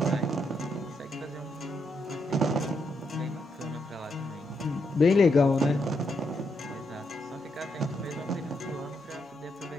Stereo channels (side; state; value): both; normal; correlation 0.80